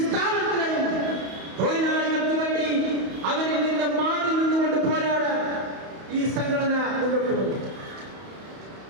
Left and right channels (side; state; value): left; late; 31 ms